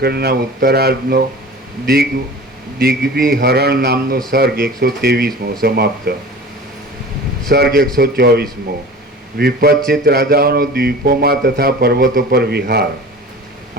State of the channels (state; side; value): normal; both; correlation 0.39